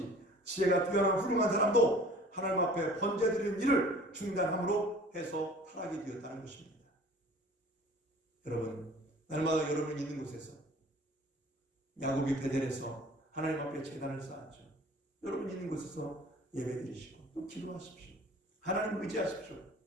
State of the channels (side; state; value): both; normal; correlation 0.46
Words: 지혜가 뛰어난 훌륭한 사람도 하나님 앞에 번제 드리는 일을 중단함으로 해서 타락이 되었다는 것입니다. 여러분, 날마다 여러분 있는 곳에서 야곱이 베델에서 하나님 앞에 제단을 쌓았죠. 여러분 있는 곳에서 예배드리시고 또 기도하십시오. 하나님 의지하십시오.